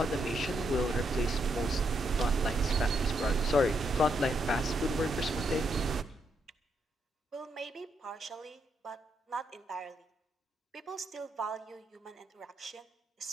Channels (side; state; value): both; normal; correlation 0.78